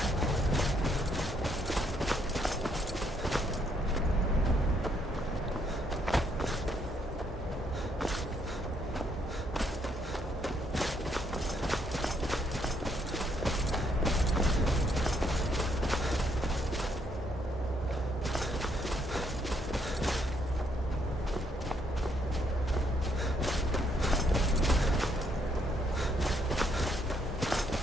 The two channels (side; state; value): both; normal; correlation 0.71